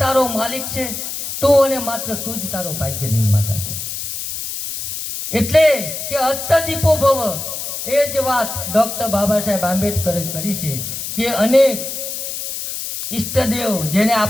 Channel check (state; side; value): noise; left; hiss, 6 dB below the sound